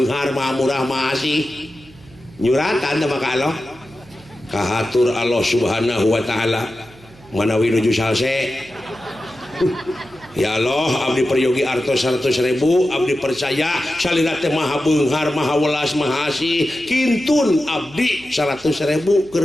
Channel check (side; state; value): right; noise; hum, 24 dB below the sound